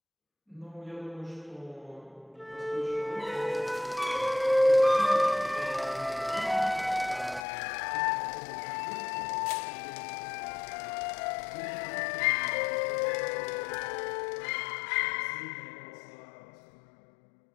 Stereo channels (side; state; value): right; drops out; at 7.5 s